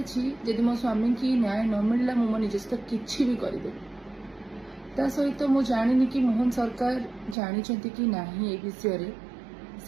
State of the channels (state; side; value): drops out; left; at 7.4 s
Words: अच्छी जदि मो स्वामी की न्याय न मिलला मो निज सहित किसी भी करेदेवी ता सहित मु जानी कि मोहन सरकार जानी कि ना ये विषय